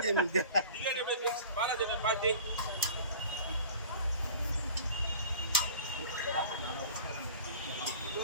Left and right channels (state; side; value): inverted; both; correlation -0.42